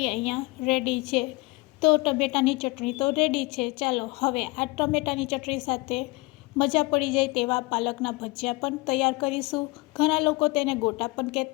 અહીંયા રેડી છે. તો ટમેટાની ચટણી તો રેડી છે. ચાલો હવે આ ટમેટાની ચટણી સાથે મજા પડી જાય તેવા પાલકના ભજીયા પણ તૈયાર કરીશું. ઘણા લોકો તેને ગોટા પણ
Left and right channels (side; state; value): right; quieter; 24.3 dB